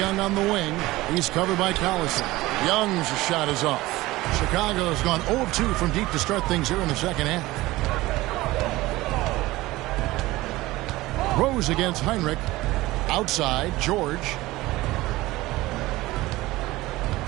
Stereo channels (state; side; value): quieter; left; 18.7 dB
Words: on the wing. He's covered by Collison. Young's shot is off. Chicago has gone 0 of 2 from deep to start things here in the 2nd half. Rose against Heinrich. Outside, George.